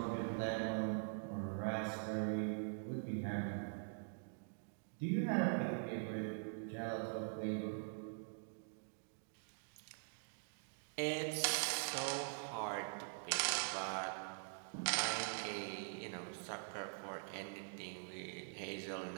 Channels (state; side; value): silent; left; digital silence